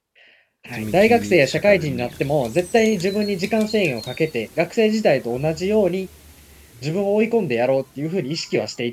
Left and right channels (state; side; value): identical; both; correlation 1.00